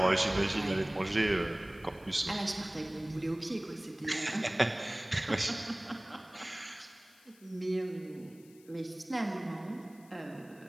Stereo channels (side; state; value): left; noise; hiss, 27 dB below the sound